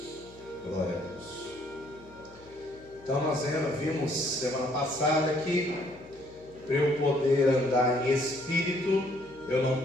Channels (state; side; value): noise; left; hum, 25 dB below the sound